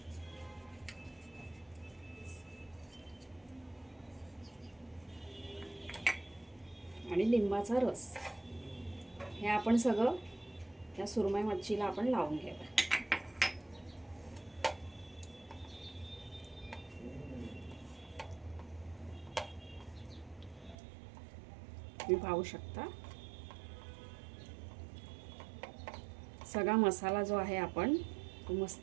आणि लिंबाचा रस हे आपण सगळं या सुरमई मच्छीला आपण लावून घ्यायचं। तुम्ही पाहू शकता सगळा मसाला जो आहे आपण तो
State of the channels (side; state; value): left; drops out; at 20.8 s